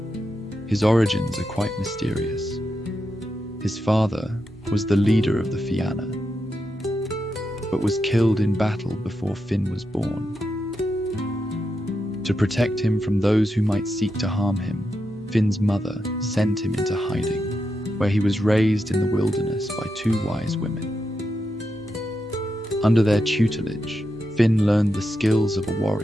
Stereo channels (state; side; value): normal; both; correlation 0.86